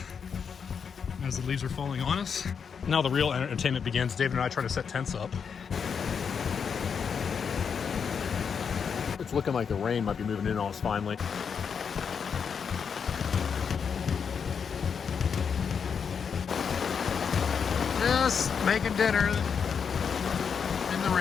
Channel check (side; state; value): right; quieter; 6.6 dB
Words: as the leaves are falling on us. Now the real entertainment begins. David and I try to set tents up. It's looking like the rain might be moving in on us finally. Just making dinner in the